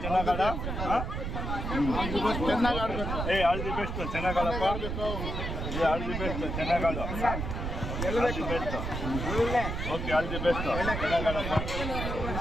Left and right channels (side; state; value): right; noise; rumble, 3 dB below the sound